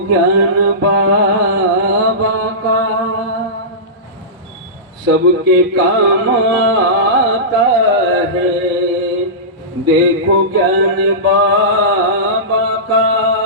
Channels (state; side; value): normal; both; correlation -0.18